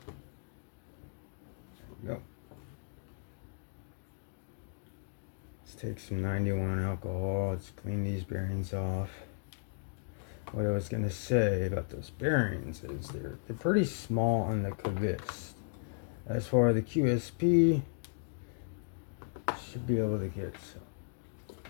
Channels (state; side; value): silent; right; digital silence